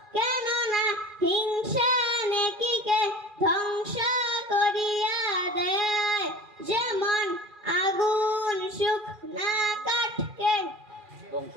কেননা হিংসা নেকিকে ধ্বংস করিয়া দেয় যেমন আগুন শুকনা কাঠকে ধ্বংস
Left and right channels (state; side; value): late; left; 2.4 ms